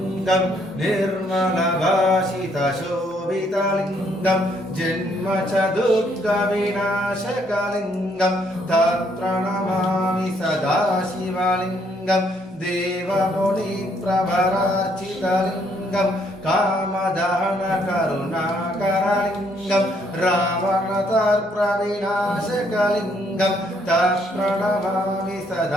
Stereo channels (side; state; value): both; normal; correlation 0.69